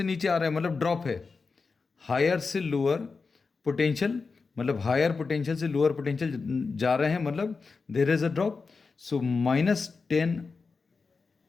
नीचे आ रहा है मतलब ड्रॉप है। हायर से लोअर पोटेंशियल मतलब हायर पोटेंशियल से लोअर पोटेंशियल जा रहे हैं मतलब there is a drop. So minus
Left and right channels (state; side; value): quieter; right; 4.6 dB